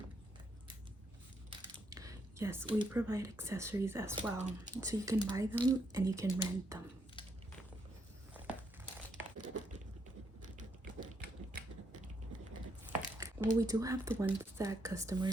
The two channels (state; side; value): normal; both; correlation 0.76